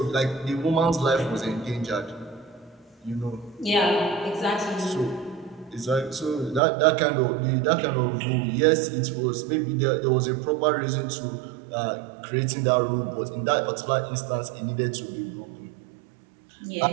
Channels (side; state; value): left; drops out; at 6.6 s